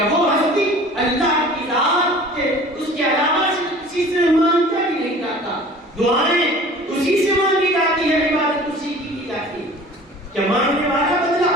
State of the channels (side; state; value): both; normal; correlation 0.45